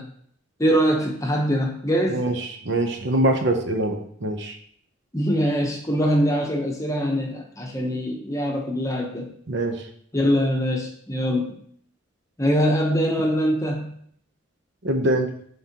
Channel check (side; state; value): both; normal; correlation 0.61